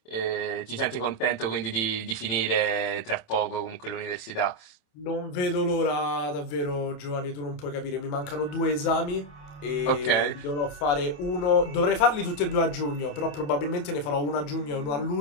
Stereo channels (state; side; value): late; right; 28 ms